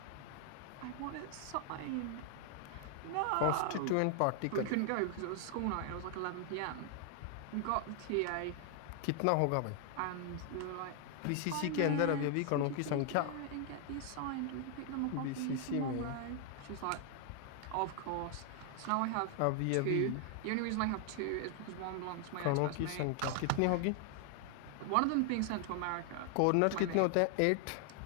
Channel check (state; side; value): different; both; correlation 0.00